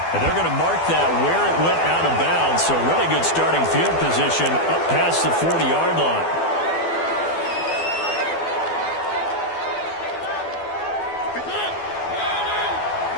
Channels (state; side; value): late; right; 12 ms